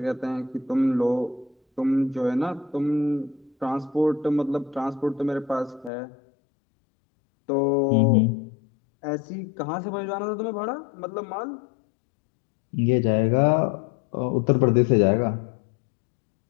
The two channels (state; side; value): drops out; right; at 5.9 s